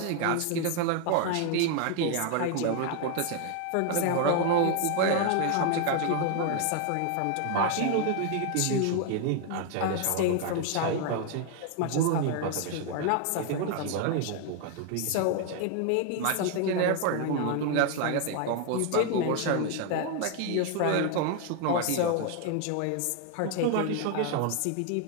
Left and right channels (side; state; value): both; different; correlation 0.01